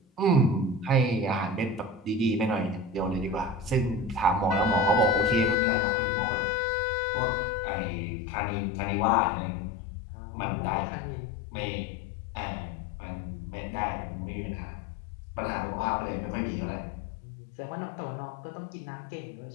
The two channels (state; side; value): drops out; right; at 5.6 s